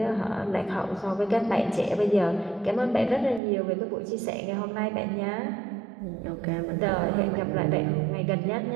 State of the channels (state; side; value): drops out; left; at 3.4 s